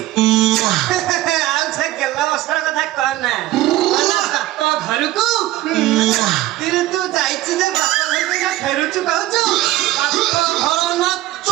ଆଉ ସେ ଗେଲା ବସ୍ତ୍ର କଥା କହନା ବାପ ଘରକୁ ତୁ ଯାଇଛି ଯେ ବାପ ଘରକୁ ଫେରୁଛୁ କହୁଛୁ। ବାପ ଘର ନା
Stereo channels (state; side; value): quieter; left; 15.8 dB